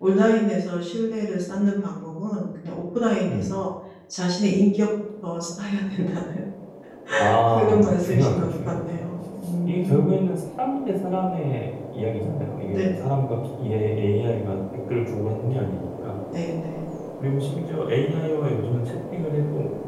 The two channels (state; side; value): identical; both; correlation 1.00